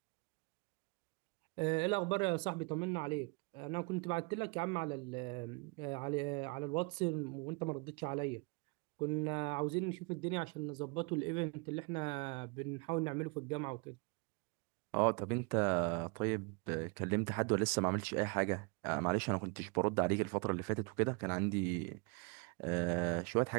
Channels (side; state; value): left; quieter; 31.0 dB